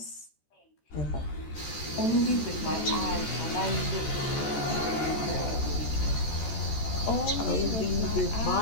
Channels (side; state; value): right; late; 14 ms